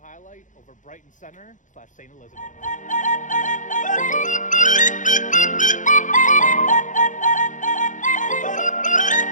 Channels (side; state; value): right; late; 0.37 ms